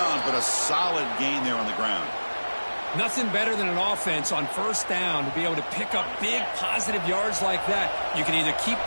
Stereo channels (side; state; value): both; inverted; correlation -1.00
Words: but a solid gain there on the ground. Nothing better than an offense on 1st down to be able to pick up big positive yards like that. You can either keep